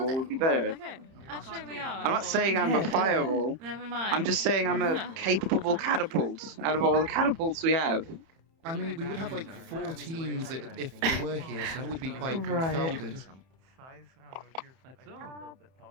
would be better. Okay. Actually, we are. I'm not saying I'm a fireball. Never mind. I'm just saying I'm a capable catapult out of all the catapults we have. I mean, we would have like 4 teams if they were here, so that would be quite Right. crowded. That's all.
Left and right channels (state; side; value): late; left; 30 ms